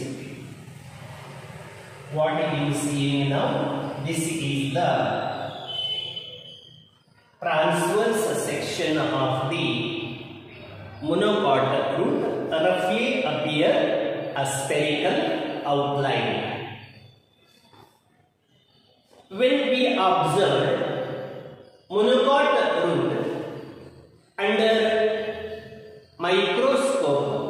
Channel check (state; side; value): identical; both; correlation 1.00